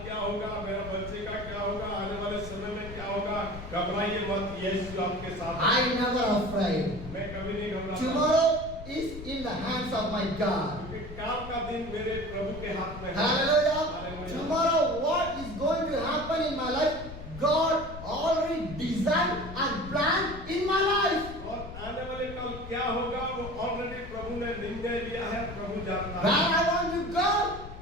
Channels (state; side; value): noise; left; rumble, 12 dB below the sound